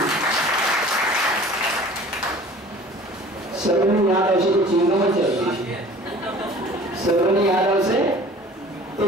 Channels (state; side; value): normal; both; correlation 0.46